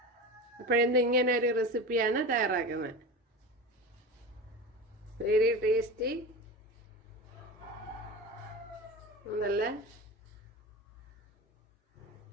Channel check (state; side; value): normal; both; correlation 0.27